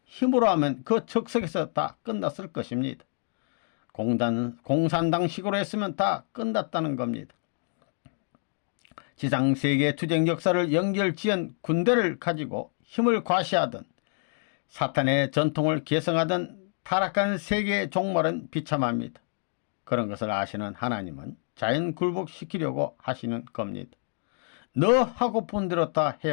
힘으로 하면 그 적석에서 다 끝났을 것입니다. 공산당식으로 했으면 다 끝났다는 겁니다. 지상세계 투쟁 역사를 연결지은 군대를 가지고 힘을 과시하던 사탄의 전통을 계승하던 타락한 세계의 종말은 비참합니다. 그런 것을 아시는 하나님은 자연 굴복시키려고 하시는 겁니다. 너 하고픈 대로 다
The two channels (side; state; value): right; silent; 58 dB below the other